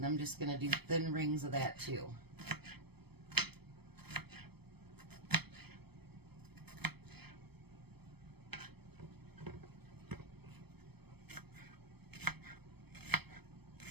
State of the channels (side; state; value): left; late; 0.97 ms